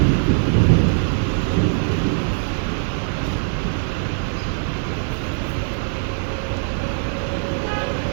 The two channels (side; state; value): left; silent; 65 dB below the other